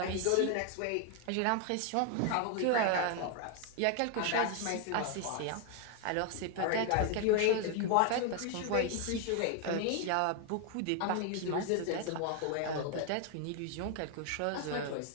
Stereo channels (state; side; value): different; both; correlation 0.00